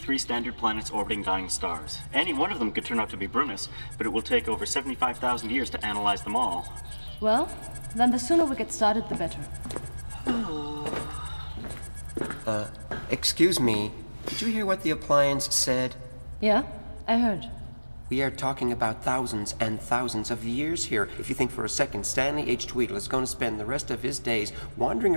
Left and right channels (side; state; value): both; inverted; correlation -1.00